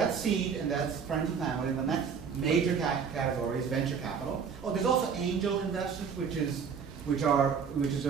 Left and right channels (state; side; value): quieter; left; 6.5 dB